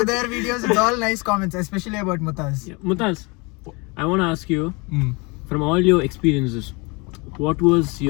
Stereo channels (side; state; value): right; quieter; 28.5 dB